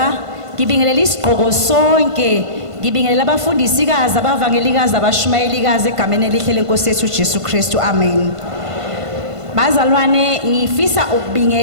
ngibingelela isiqhoko sonke, ngibingelela abafundisikazi abavangelikazi abashumayelikazi egameni elihle lenkosi yethu Jesu Kristu. Amen. Bazalwane ngifisa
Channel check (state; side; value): late; left; 1.5 ms